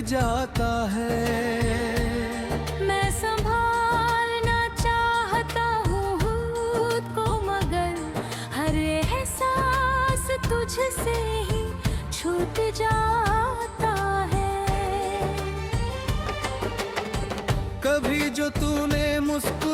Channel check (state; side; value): identical; both; correlation 1.00